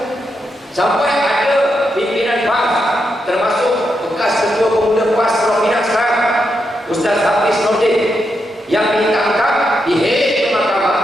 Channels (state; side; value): normal; both; correlation 0.83